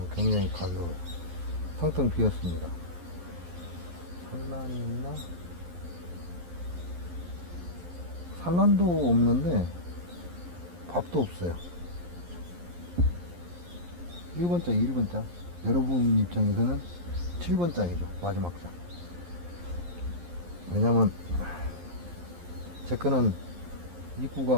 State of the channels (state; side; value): late; left; 11 ms